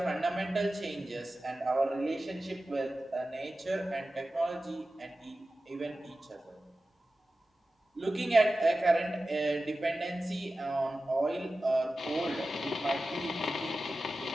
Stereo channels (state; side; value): normal; both; correlation 0.95